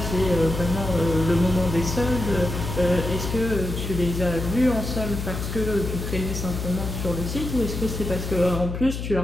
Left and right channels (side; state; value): left; noise; hum, 5 dB below the sound